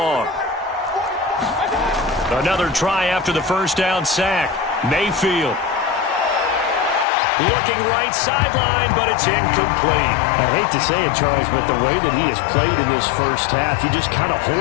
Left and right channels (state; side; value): drops out; right; at 7.1 s